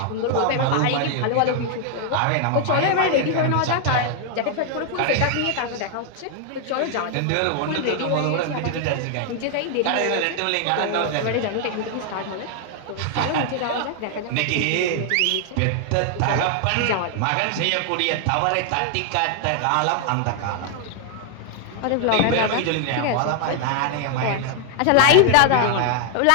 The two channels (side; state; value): both; different; correlation 0.00